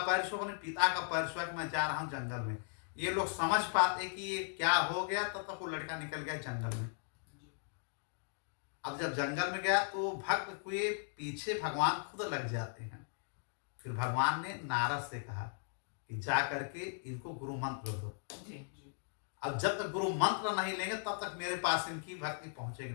छुओ, अपने पिता का पैर छुआ कि मैं जा रहा हूँ जंगल में। ये लोग समझ पाते कि ये क्या हो गया, तब तक वो लड़का निकल गया जंगल में। अब जब जंगल में गया तो भक्त के पीछे भगवान खुद लग जाते हैं। फिर भगवान ने नारद से कहा कि जा करके इनको गुरु मंत्र दो। अब जब तक गुरु मंत्र नहीं लेंगे तब तक मेरे पास इनकी भक्ति पहुंचेगी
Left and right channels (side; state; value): right; silent; digital silence